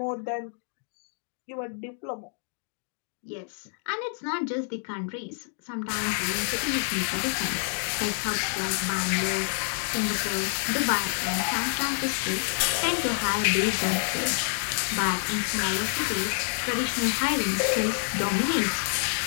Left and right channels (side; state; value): right; silent; 59 dB below the other